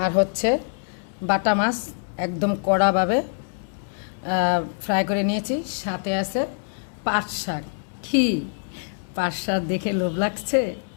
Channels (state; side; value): silent; right; digital silence